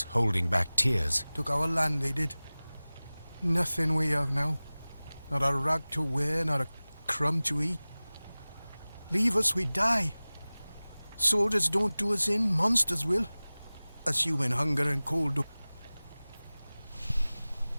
holding back tears. Took our land, they did. Nothing we have now. Not a rag to wear, not a crumb to eat. Leave us, we die. Soldiers don't do us in, monsters will. Us human hunger and cold do...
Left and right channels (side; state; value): both; inverted; correlation -0.99